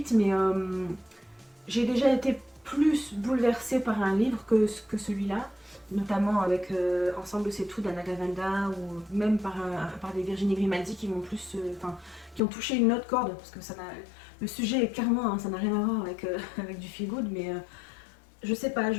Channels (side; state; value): right; drops out; at 12.4 s